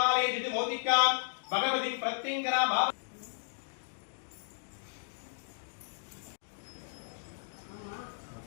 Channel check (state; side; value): silent; right; digital silence